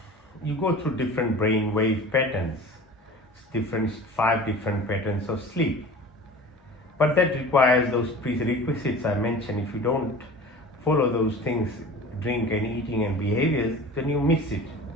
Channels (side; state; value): both; normal; correlation 0.39